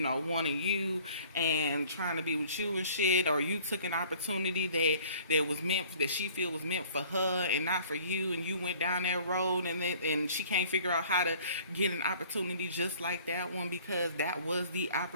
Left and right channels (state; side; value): inverted; both; correlation -0.52